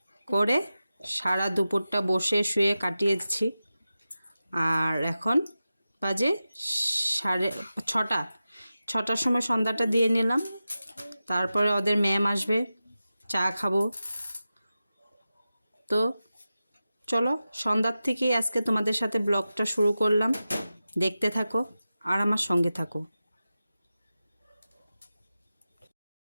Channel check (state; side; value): inverted; both; correlation -0.93